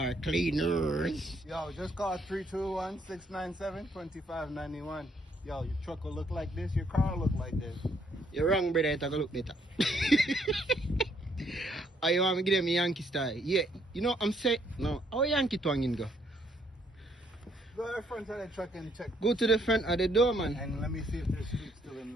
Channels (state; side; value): normal; both; correlation 0.69